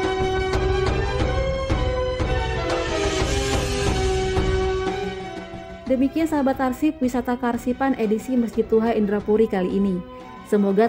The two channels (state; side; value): identical; both; correlation 1.00